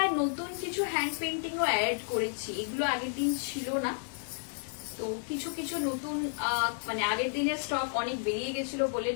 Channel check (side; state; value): right; silent; digital silence